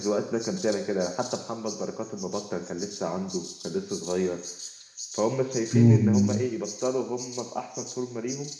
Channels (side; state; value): both; identical; correlation 1.00